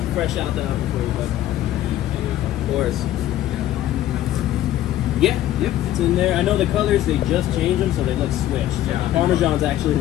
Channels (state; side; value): quieter; right; 13.3 dB